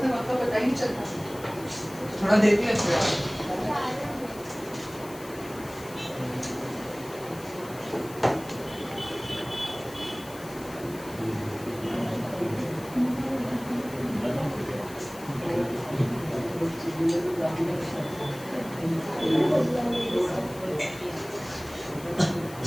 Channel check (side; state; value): left; noise; hiss, 18 dB below the sound